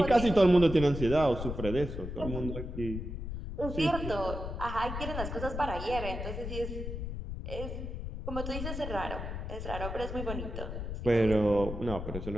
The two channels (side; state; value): left; noise; rumble, 6 dB below the sound